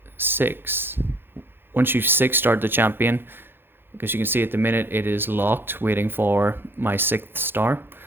6. Once you 6-star the champion, because you can see at the minute it is locked, waiting for my 6th star.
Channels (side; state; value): left; late; 0.10 ms